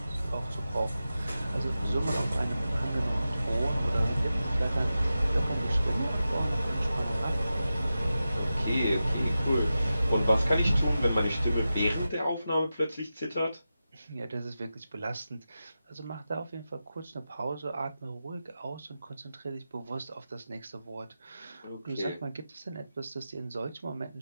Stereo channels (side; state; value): both; inverted; correlation -0.92